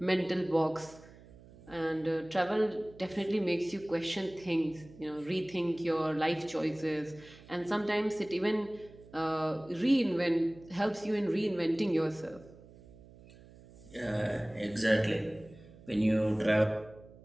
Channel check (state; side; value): noise; right; hum, 21 dB below the sound